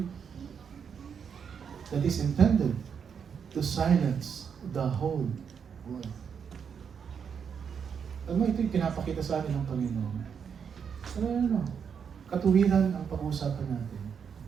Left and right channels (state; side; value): quieter; left; 7.0 dB